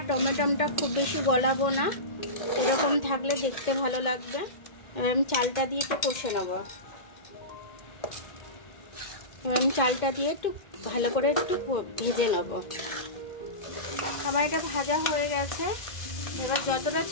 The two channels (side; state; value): right; late; 2.1 ms